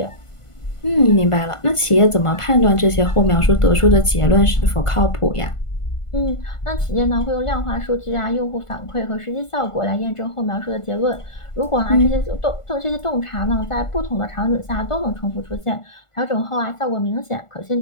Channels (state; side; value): late; right; 1.5 ms